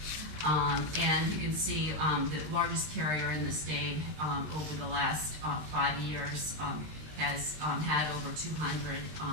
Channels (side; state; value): left; late; 19 ms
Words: And you can see the largest carrier in the state over the last 5 years has had over